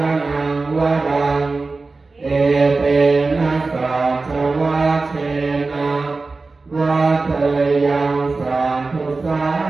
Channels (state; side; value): quieter; left; 3.8 dB